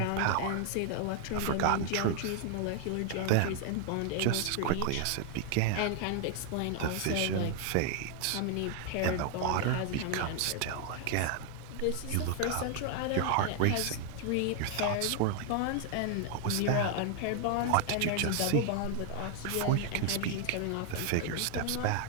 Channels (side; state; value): both; different; correlation 0.00